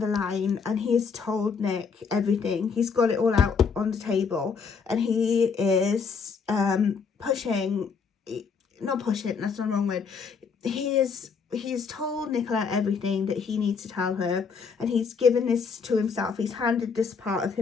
the line and he has told Nick everything. He's got it all out on the table, and he is pushing, not pushing, that's not the wrong word. He's told Nicola everything that he needs to tell her, and he's given this to himself. He's handed this part of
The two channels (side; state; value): right; quieter; 5.6 dB